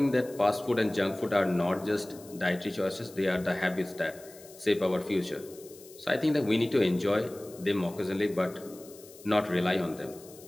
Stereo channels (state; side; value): noise; left; hiss, 21 dB below the sound